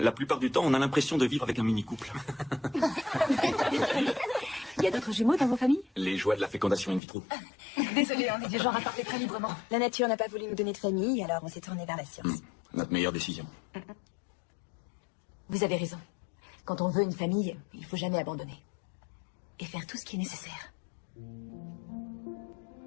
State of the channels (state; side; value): drops out; right; at 7.0 s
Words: plupart du temps, on a l'impression de vivre avec un mini-couple. Il y a d'autres jumeaux dans vos familles? Les joies de la fécondation in vitro. Désolée, on est du genre à parler très librement. La nature n'a pas voulu nous donner de famille, alors on s'est tourné vers la science. Notre meilleure décision. Vous avez raison. Quand on veut une famille, il faut jamais abandonner. Et faire tout ce qui est nécessaire.